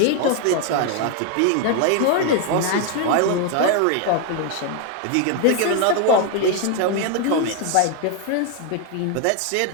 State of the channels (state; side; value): different; both; correlation 0.01